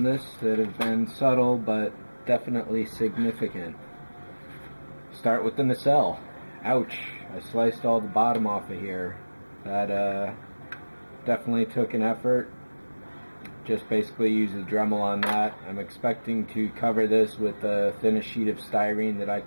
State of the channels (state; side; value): inverted; both; correlation -1.00